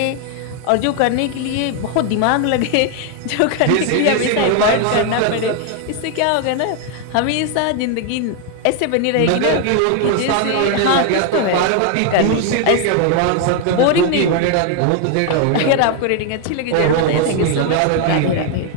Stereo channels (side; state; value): both; different; correlation 0.00